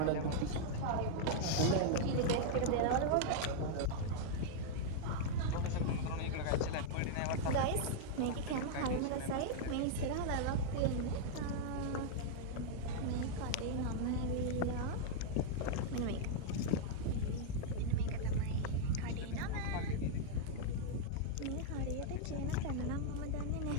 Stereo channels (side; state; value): both; different; correlation -0.01